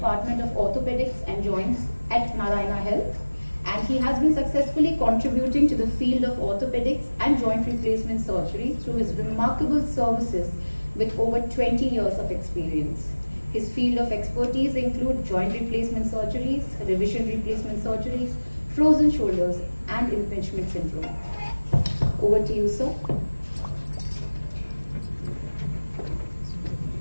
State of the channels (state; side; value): inverted; both; correlation -1.00